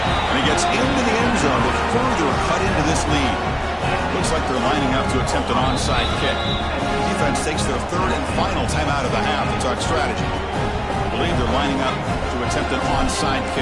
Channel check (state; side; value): identical; both; correlation 1.00